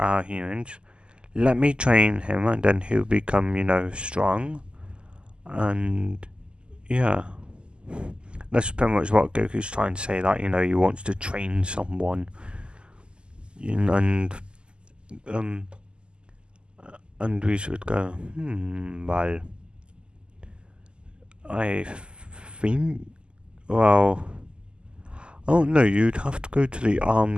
humans. Let me train him, and then he'll become, strong. And, yeah. That's pretty much what Goku's trying to say, that, he wants to train someone. And we should go, well, I think, well, oh no, you'd have to go to the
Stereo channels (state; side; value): late; left; 0.050 ms